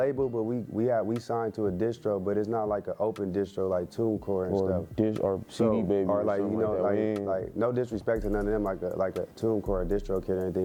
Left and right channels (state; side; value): identical; both; correlation 1.00